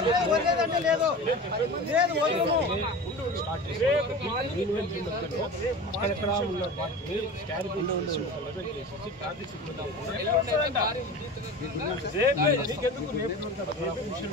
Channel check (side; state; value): both; normal; correlation 0.33